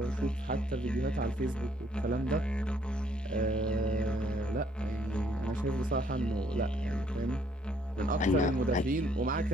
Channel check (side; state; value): both; normal; correlation 0.66